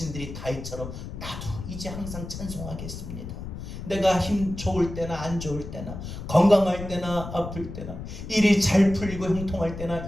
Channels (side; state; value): left; noise; rumble, 9 dB below the sound